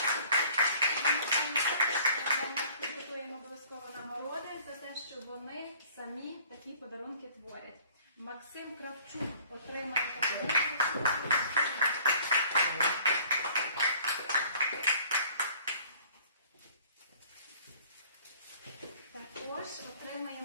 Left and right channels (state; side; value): inverted; both; correlation -0.52